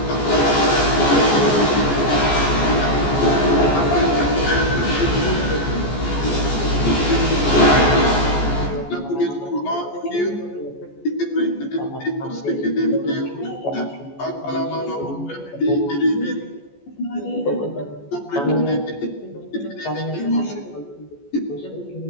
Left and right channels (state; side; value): late; right; 14 ms